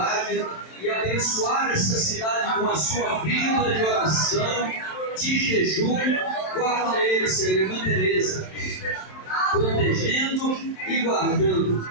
e abençoar esta cidade com a sua vida de oração, de jejum. Guarda ele, Senhor, irmã Teresa, protegendo e guardando.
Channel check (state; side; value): late; right; 27 ms